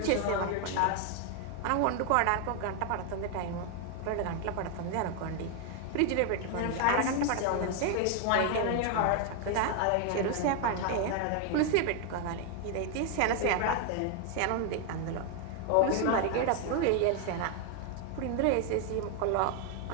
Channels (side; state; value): both; different; correlation 0.00